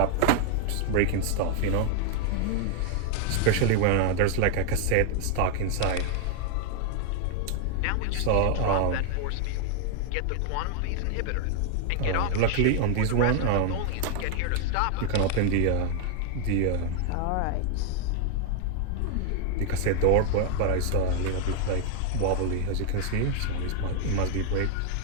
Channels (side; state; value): both; different; correlation 0.00